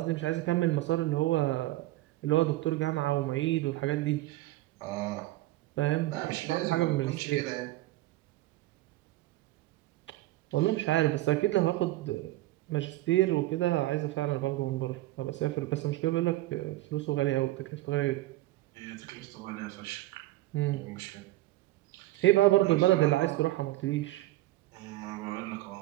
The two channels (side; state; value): left; quieter; 17.0 dB